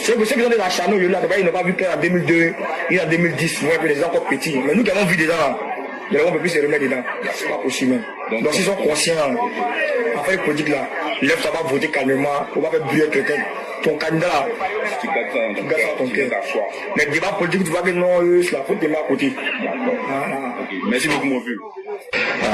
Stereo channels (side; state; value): both; identical; correlation 1.00